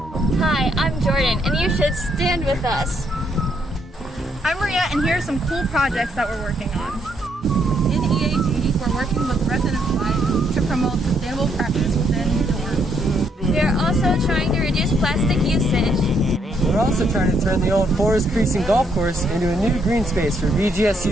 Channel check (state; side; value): normal; both; correlation 0.73